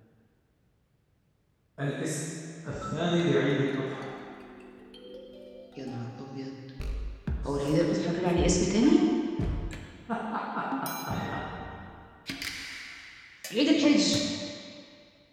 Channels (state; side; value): identical; both; correlation 1.00